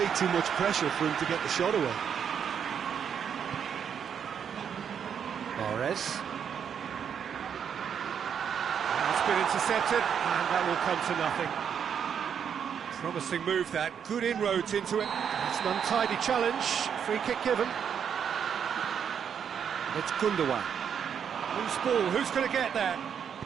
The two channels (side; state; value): left; quieter; 7.8 dB